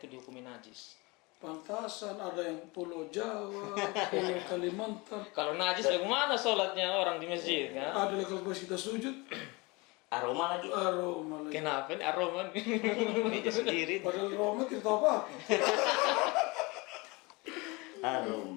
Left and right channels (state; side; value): quieter; right; 25.7 dB